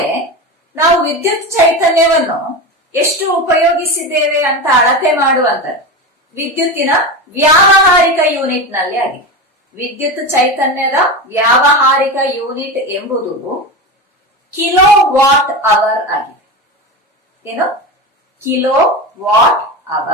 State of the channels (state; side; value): normal; both; correlation 0.22